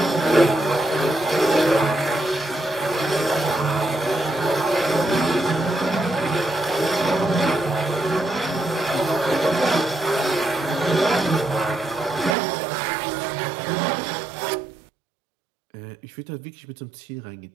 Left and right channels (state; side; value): drops out; left; at 12.4 s